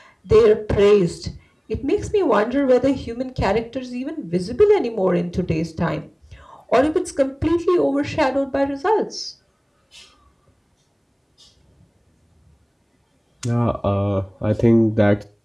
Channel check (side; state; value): both; identical; correlation 1.00